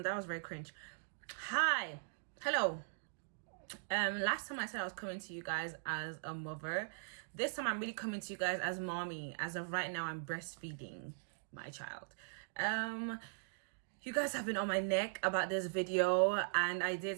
was very cringe. Hi. Hello. Last time I said I was coming to you guys as a mother. This time I'm really coming to you guys as mommy. As of right now, I'm breastfeeding my child. You guys have been on my neck about this video, and I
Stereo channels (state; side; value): silent; left; digital silence